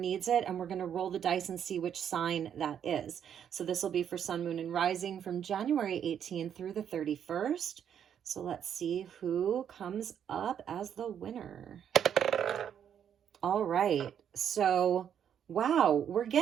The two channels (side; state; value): left; quieter; 8.8 dB